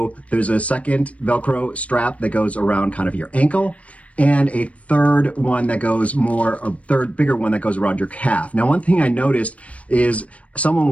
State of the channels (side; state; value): right; late; 0.065 ms